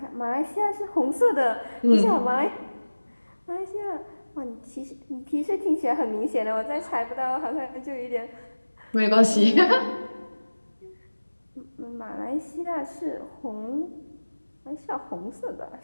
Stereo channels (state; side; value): inverted; both; correlation -1.00